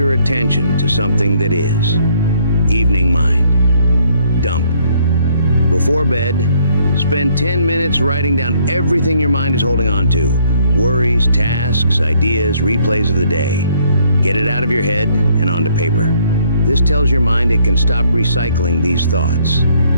attention to something that is. Evening mind. Dump. Before bed, spend 10 minutes writing down everything your mind is holding on to. Worries, tasks, ideas, replays of the day. Get it out of your head and onto paper. This tells your mind it can stop recycling these thoughts.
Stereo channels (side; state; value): both; inverted; correlation -0.66